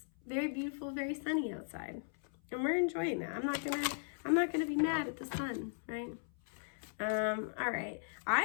very beautiful, very sunny outside, and we're enjoying that. I'm not gonna be mad at the sun, right? All right.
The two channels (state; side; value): silent; right; 53 dB below the other